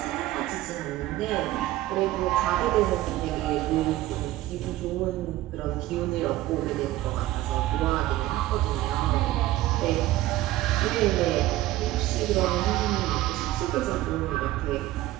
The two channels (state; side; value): quieter; left; 15.8 dB